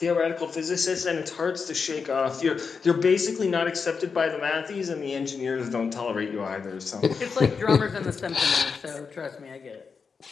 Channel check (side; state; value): right; quieter; 5.4 dB